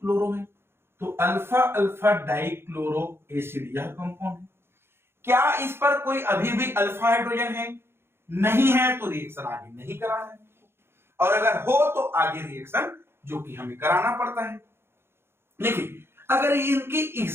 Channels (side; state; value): left; late; 0.12 ms